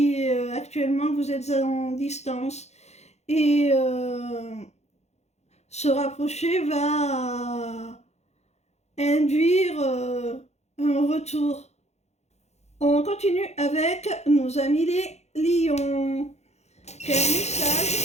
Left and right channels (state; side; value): late; right; 0.32 ms